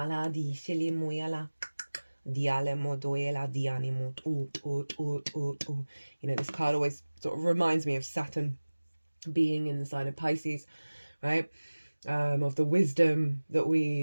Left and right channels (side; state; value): both; inverted; correlation -1.00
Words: di shili moyala. Diale modoela dianimo. You know, this card always sort of reminds me of Saturn being in the sign of Pisces, right? Of the wisdom that